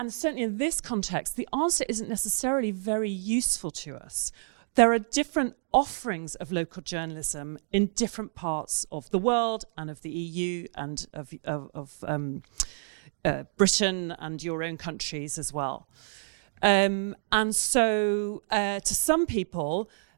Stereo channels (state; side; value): silent; left; digital silence